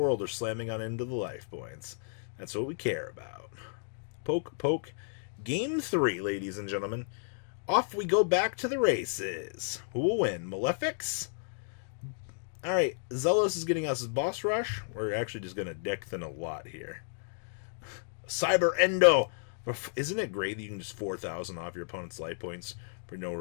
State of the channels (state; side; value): silent; right; digital silence